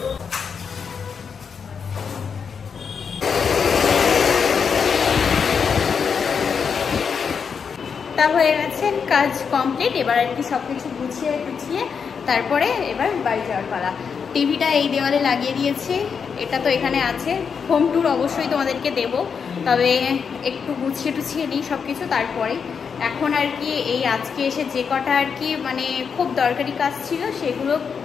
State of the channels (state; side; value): quieter; right; 6.3 dB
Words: তা হয়ে গেছে, কাজ কমপ্লিট। এবার আর কি সবকিছু গুছিয়ে তারপরে এবার বাড়ি যাওয়ার পালা। টিভিটা এই দেওয়ালে লাগিয়ে দিয়েছি, এটা তো এখানে আছে। হোম ট্যুর অবশ্যই তোমাদেরকে দেব, তবে একটু গুছিয়ে নিই সব কিছু তারপরে। এখন আর কি এই আজকে এসে যে কটা আর কি মানে খুব দরকারি কাজ ছিল সেগুলো